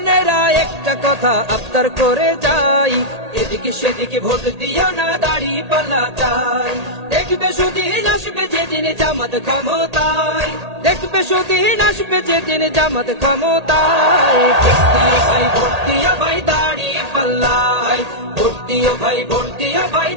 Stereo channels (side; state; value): left; late; 1.8 ms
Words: একটা কথা আবদার করে যাই, এদিকে সেদিকে ভোট দিও না, দাড়ি পাল্লা চাই। দেখবে সুদিন আসবে যেদিন জামাত ক্ষমতায়, দেখবে সুদিন আসবে যেদিন জামাত ক্ষমতায়। ভোট দিও ভাই দাড়ি পাল্লায়, ভোট দিও ভাই, ভোট দিও ভাই